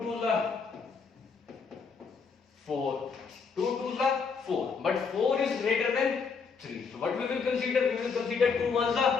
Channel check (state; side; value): quieter; right; 5.4 dB